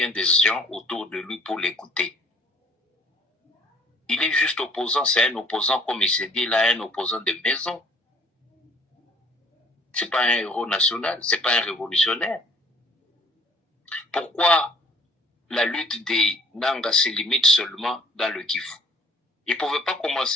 de gens autour de lui pour l'écouter? Il est juste opposant, c'est un opposant, comme il s'est dit là, un opposant de maison. C'est pas un héros national, c'est pas un révolutionnaire. Pourquoi la lutte des Nanga se limite seulement dans le Kivu? Il ne pouvait pas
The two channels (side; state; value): both; normal; correlation 0.57